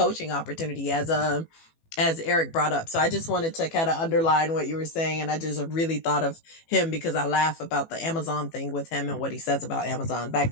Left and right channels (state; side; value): late; right; 18 ms